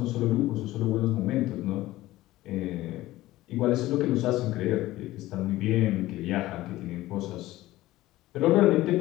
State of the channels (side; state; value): right; quieter; 16.7 dB